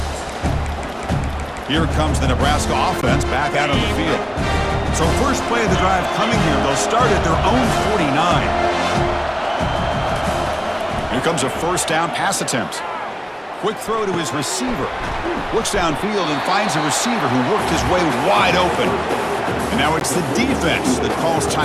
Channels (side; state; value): both; identical; correlation 1.00